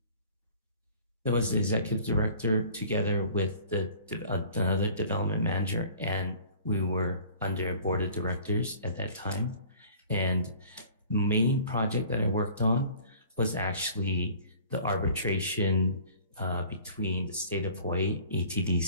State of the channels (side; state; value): both; inverted; correlation -0.49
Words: There was the executive director together with another development manager, and we were under board of directors at that time. And main project that I worked on was actually the arbitration between the state of Hawaii,